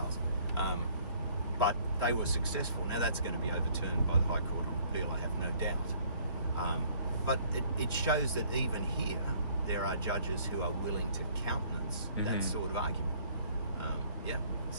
but they were successful. Now that's going to be overturned by the High Court on appeal, I have no doubt. But it shows that even here there are judges who are willing to countenance that sort of argument.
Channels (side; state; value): both; inverted; correlation -0.59